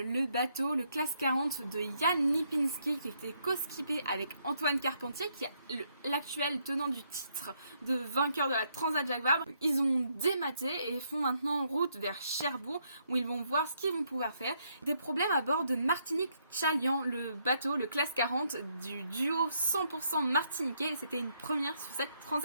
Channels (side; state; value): both; inverted; correlation -0.74